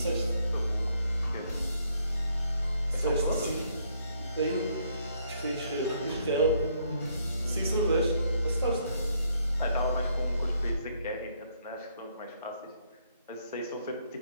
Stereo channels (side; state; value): both; inverted; correlation -0.70